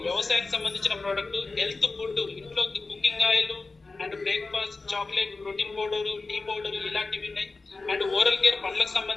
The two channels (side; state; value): right; quieter; 3.7 dB